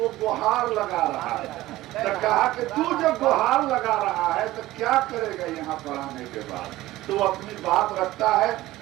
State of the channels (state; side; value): quieter; left; 16.7 dB